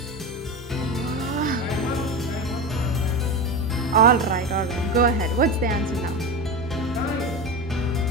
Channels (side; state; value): both; normal; correlation 0.22